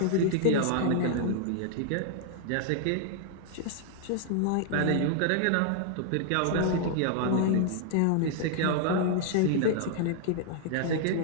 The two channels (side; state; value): both; different; correlation -0.01